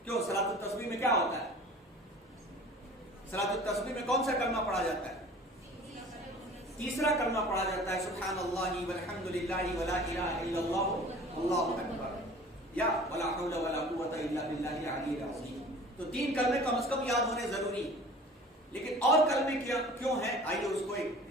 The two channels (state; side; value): normal; both; correlation 0.44